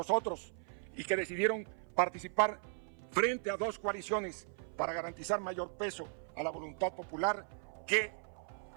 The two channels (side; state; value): left; silent; 53 dB below the other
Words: y que decidieron participar frente a 2 coaliciones para garantizar mayor peso a la voluntad popular que